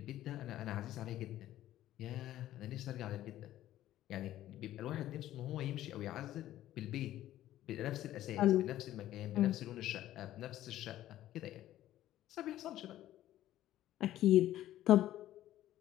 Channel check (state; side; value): quieter; right; 13.5 dB